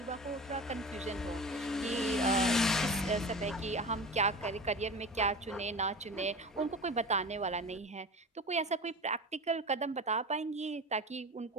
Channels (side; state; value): both; normal; correlation 0.32